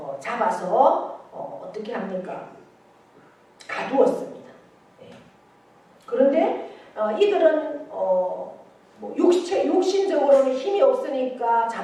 잡아서 어떻게 합니까? 가두었습니다. 그런데 이들은 육신적으로는 힘이 없으니까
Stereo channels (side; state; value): both; identical; correlation 1.00